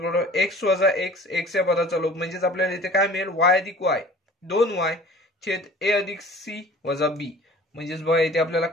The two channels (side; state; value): both; normal; correlation 0.46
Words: एक्स वजा एक्स एक्स या पदाचा लोप, म्हणजेच आपल्याला इथे काय मिळेल वाय अधिक वाय 2y छेद ए अधिक सी वजा बी. म्हणजेच बघा इथे आपल्याला